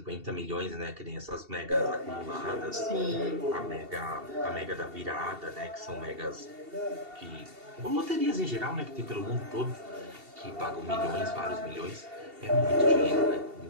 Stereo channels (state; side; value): late; left; 2.7 ms